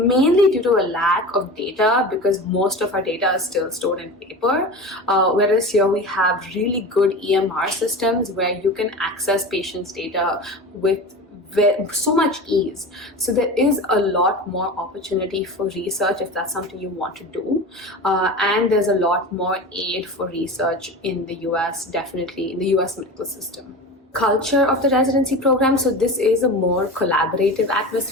due to a lack of data, because most of our data is still stored in paper, whereas here we have really good EMR systems where you can access patients' data with so much ease. So there is a lot more opportunity for research if that's something you want to do, and there's a lot more aid for research in the US, definitely in the US medical system. Culture of the residency program, so this is a more collaborative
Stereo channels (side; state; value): both; normal; correlation 0.31